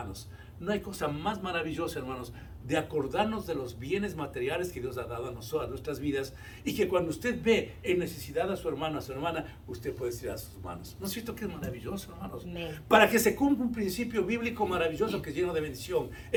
No hay cosa más maravillosa, hermanos, de acordarnos de los bienes materiales que Dios ha dado a nosotros, a nuestras vidas, y que cuando usted ve en necesidad a su hermano, a su hermana, usted puede tirar sus manos. ¿No es cierto que es maravilloso, hermanos? Para que se cumpla un principio bíblico maravilloso que es lleno de bendición.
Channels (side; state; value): both; identical; correlation 1.00